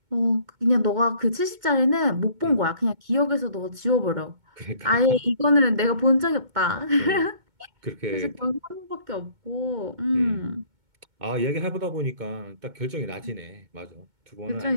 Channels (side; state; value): left; late; 2.2 ms